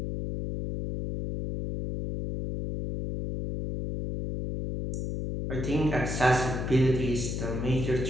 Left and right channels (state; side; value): noise; left; hum, 3 dB below the sound